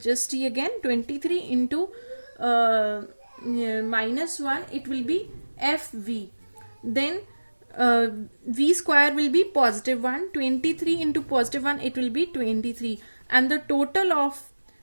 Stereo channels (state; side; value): inverted; both; correlation -1.00